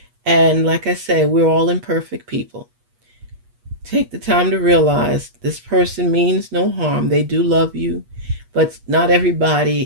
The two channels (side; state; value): left; late; 8.3 ms